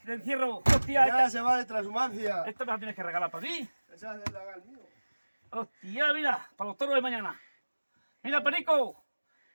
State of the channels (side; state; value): both; inverted; correlation -1.00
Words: encierro. Hostia, Mañana se va de transhumancia. esta me la tienes que regalar para ti. Esa es del lagar mío. Hostia, mira, para los toros de mañana. Mira, Perico.